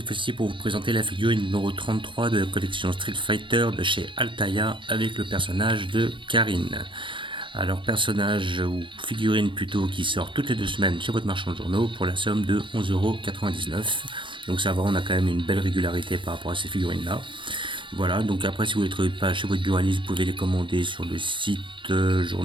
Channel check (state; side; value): late; left; 0.24 ms